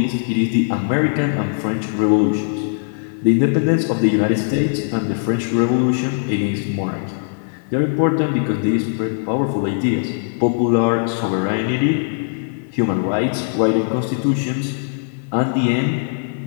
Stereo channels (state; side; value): silent; right; 58 dB below the other